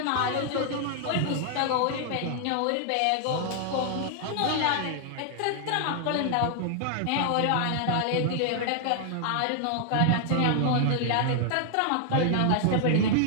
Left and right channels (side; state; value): both; different; correlation 0.00